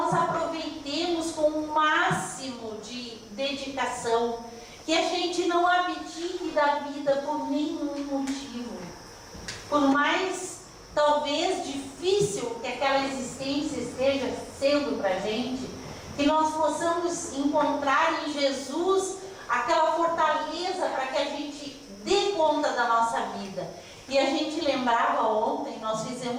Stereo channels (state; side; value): identical; both; correlation 1.00